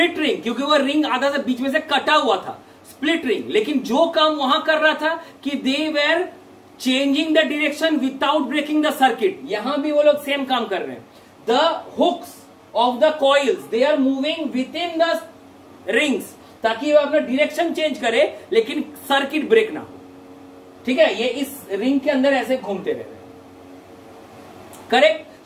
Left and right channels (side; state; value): both; identical; correlation 1.00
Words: रिंग क्योंकि वो रिंग आधा से बीच में से कटा हुआ था, स्प्लिट रिंग. लेकिन जो काम वहां कर रहा था कि they were changing the direction without breaking the circuit. यहां भी वो लोग सेम काम कर रहे हैं. The hooks of the coils they are moving within the rings ताकि वो अपना डायरेक्शन चेंज करे लेकिन सर्किट ब्रेक ना हो. ठीक है, ये इस रिंग के अंदर ऐसे घूमते रह रहे. Correct.